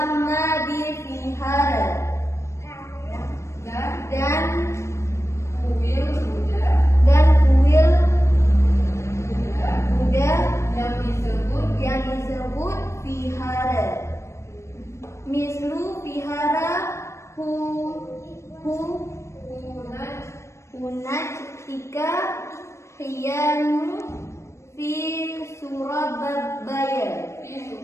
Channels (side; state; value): right; late; 0.13 ms